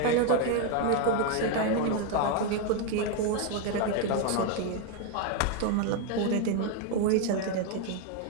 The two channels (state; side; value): different; both; correlation 0.01